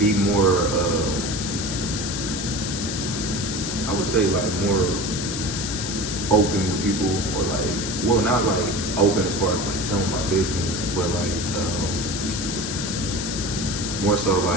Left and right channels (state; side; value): noise; left; hiss, 5 dB below the sound